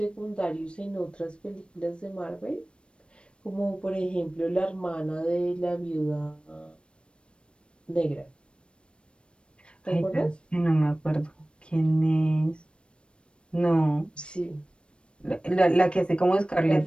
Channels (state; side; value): late; right; 0.057 ms